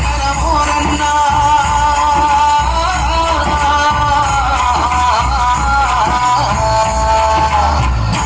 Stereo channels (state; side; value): identical; both; correlation 1.00